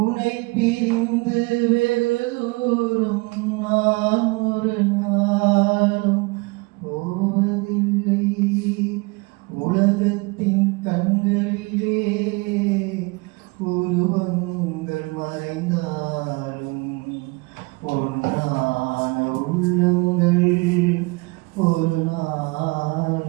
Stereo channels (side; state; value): left; quieter; 26.3 dB